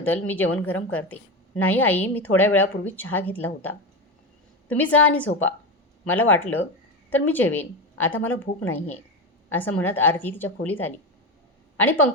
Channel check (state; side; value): normal; both; correlation 0.18